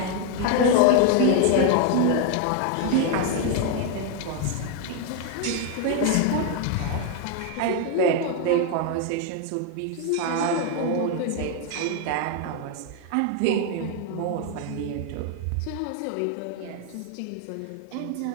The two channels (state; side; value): different; both; correlation 0.01